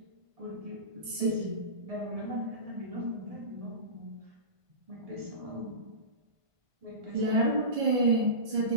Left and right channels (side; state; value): left; late; 1.5 ms